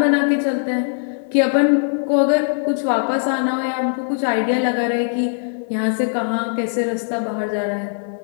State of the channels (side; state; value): right; silent; 66 dB below the other